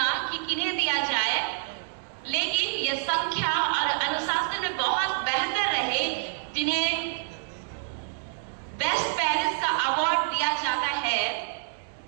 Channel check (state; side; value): silent; left; digital silence